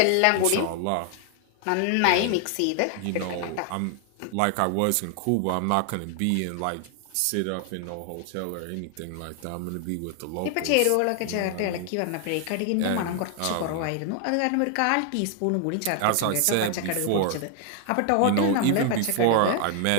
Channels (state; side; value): different; both; correlation 0.00